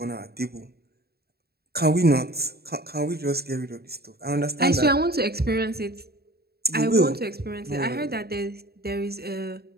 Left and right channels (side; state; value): left; late; 0.46 ms